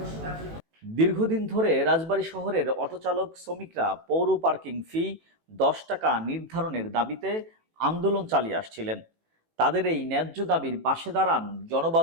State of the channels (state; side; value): late; left; 18 ms